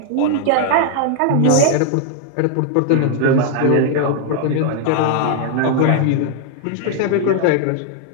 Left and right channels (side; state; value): both; different; correlation 0.00